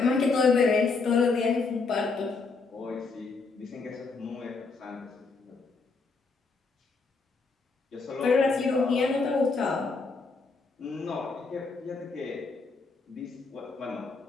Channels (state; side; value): quieter; right; 4.2 dB